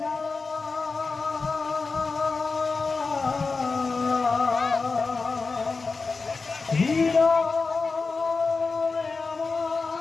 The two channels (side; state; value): right; quieter; 4.2 dB